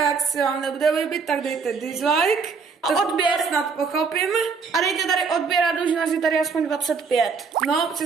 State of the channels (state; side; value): quieter; left; 5.2 dB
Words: jak se vám nebude líbit, tak dejte dislike. A To odběr. snad pochopím. A dejte tady odběr a dlužnost je tady aspoň 25. No,